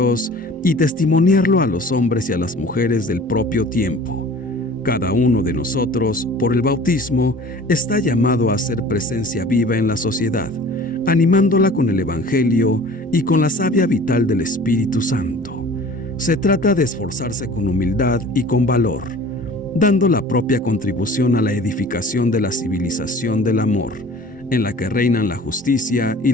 y testimoniarlo a los hombres y a las mujeres del propio tiempo. Cada uno de nosotros, por el bautismo, está llamado a ser presencia viva en la sociedad, animándola con el Evangelio y con la savia vital del Espíritu Santo. Se trata de esforzarse con humildad y con valor, dando la propia contribución a la edificación de la civilización del amor, en la que reinan la justicia y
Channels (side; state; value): both; normal; correlation 0.45